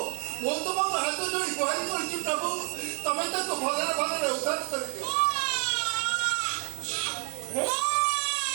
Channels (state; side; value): quieter; left; 39.7 dB